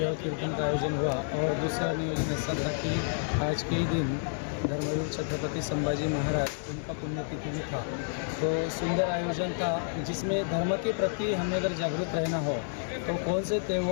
यह कीर्तन का आयोजन हुआ। और दूसरा नियोजन ऐसा था कि आज के ही दिन धर्मवीर छत्रपति संभाजी महाराज उनका पुण्यतिथि भी था, तो सुंदर आयोजन था जिसमें धर्म के प्रति हमें अगर जागरूक रहना हो तो कौन से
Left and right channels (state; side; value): silent; right; digital silence